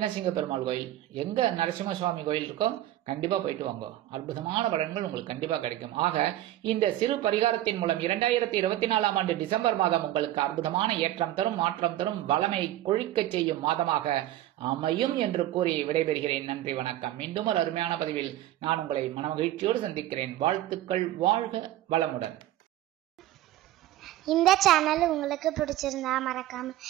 சிங்கப்பெருமாள் கோயில், எங்க நரசிம்ம சுவாமி கோயில் இருக்கோ கண்டிப்பா போயிட்டு வாங்க. அற்புதமான பலன்கள் உங்களுக்கு கண்டிப்பா கிடைக்கும். ஆக இந்த சிறு பரிகாரத்தின் மூலம் 2024ஆம் ஆண்டு டிசம்பர் மாதம் உங்களுக்கு அற்புதமான ஏற்றம் தரும், மாற்றம் தரும், வளமை கொழிக்க செய்யும் மாதமாக அமையும் என்று கூறி விடைபெறுகிறேன். நன்றி, வணக்கம். மீண்டும் ஒரு அருமையான பதிவில் நான் உங்களை மனமகிழ்ச்சியோடு சந்திக்கிறேன். வாழ்த்துக்கள். வாழ்க வளமுடன். இந்த சேனல் உங்களுக்கு பிடிச்சிருந்தா மறக்காம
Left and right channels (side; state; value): left; quieter; 14.1 dB